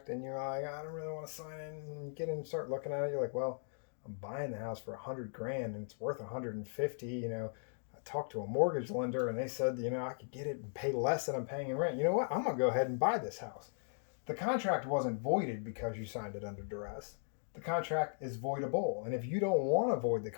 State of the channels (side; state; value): right; silent; digital silence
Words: and you're like, I don't really want to sign it, and you get in and start looking at it, you're like, well, I'm buying the house for $100,000 and it's worth $150,000. I talked to a mortgage lender and they said, I could get it and pay less than I'm paying in rent. You know what? I'm going to go ahead and buy this house. The contract wasn't voided because you signed it under duress. The contract is voidable. And if you don't want to void the